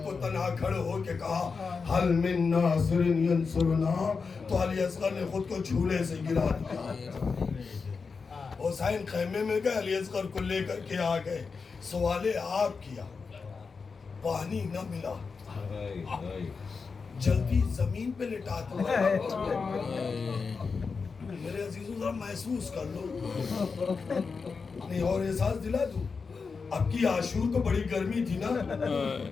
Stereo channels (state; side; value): quieter; right; 5.0 dB